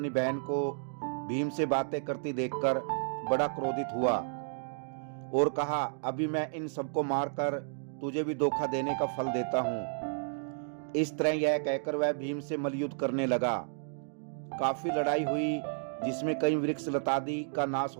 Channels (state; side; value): silent; left; digital silence